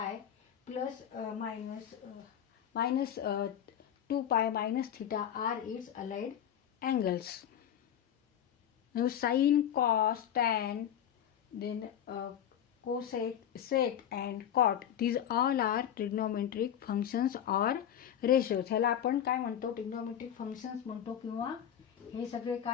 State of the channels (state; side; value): quieter; right; 9.8 dB